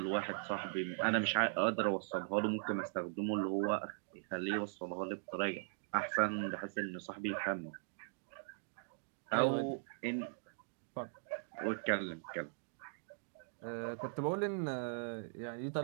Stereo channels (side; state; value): left; silent; digital silence